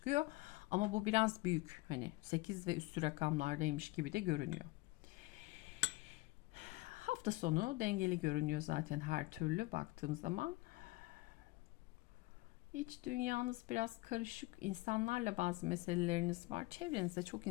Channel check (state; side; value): quieter; right; 21.7 dB